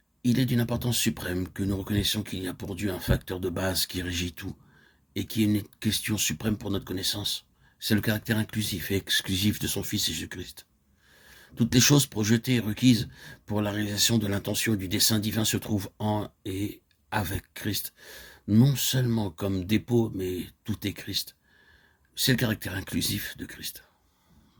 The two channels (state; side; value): identical; both; correlation 1.00